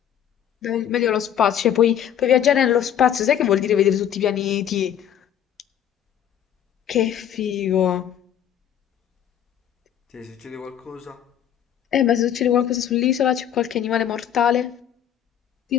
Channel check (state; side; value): quieter; right; 9.8 dB